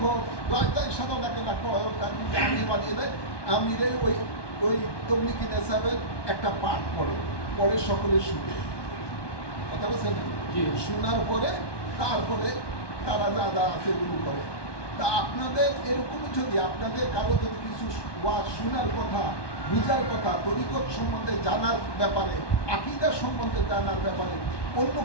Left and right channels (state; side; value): late; right; 1.2 ms